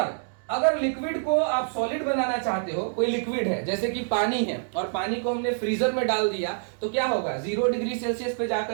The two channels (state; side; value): silent; left; digital silence